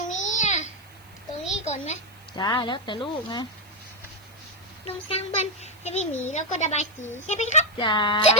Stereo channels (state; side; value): noise; right; hiss, 27 dB below the sound